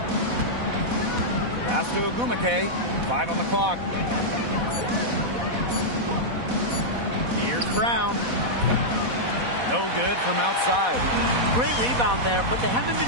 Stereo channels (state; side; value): late; left; 4.1 ms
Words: Pass to Agumake. 5 on the clock. Here's Brown. No good from outside. Great rebound there, but they haven't